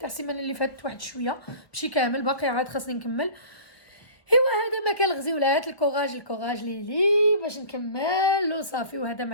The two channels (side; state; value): right; late; 1.4 ms